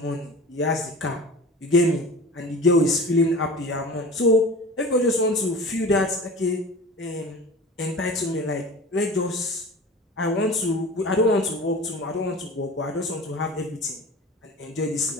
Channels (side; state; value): both; normal; correlation 0.37